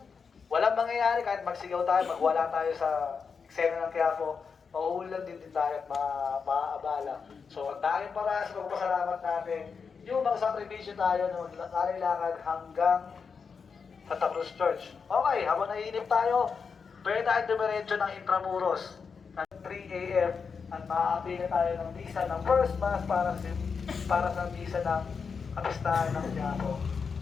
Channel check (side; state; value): right; quieter; 5.6 dB